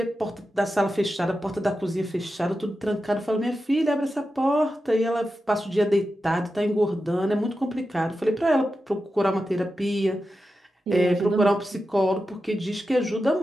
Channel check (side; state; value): both; normal; correlation 0.91